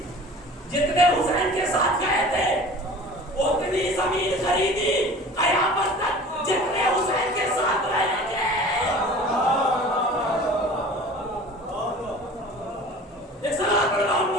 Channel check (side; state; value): both; normal; correlation 0.42